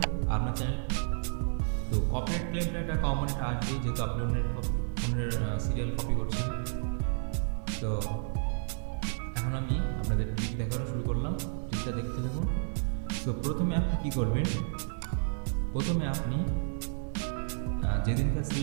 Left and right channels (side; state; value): left; silent; digital silence